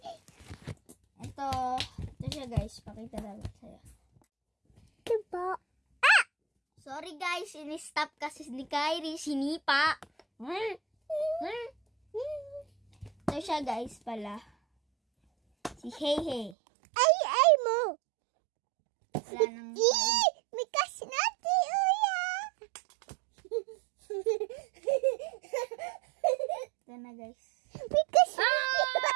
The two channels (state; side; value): drops out; left; at 16.6 s